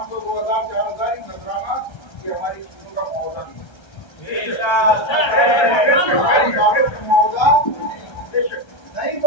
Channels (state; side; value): late; right; 1.3 ms